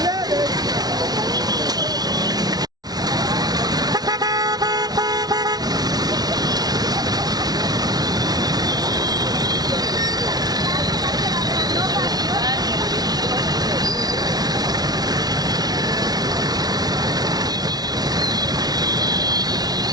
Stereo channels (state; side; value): late; left; 0.19 ms